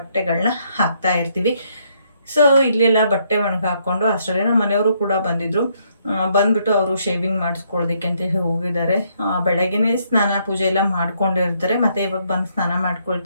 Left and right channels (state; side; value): inverted; both; correlation -0.71